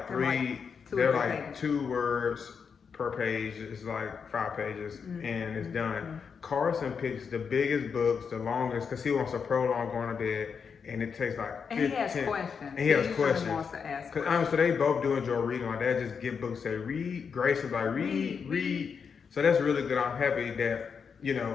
they're like 2 words per page. It's like 5 pages and it's done. Carson picks the biggest books, the longest, because he wants to prolong going to bed, and it takes like 15. And he has questions. And he has questions. Wants to ask questions. So they both do enjoy reading. Like they just get books, say read. Grayson like read. So that's really good. I'm happy that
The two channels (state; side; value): quieter; right; 6.2 dB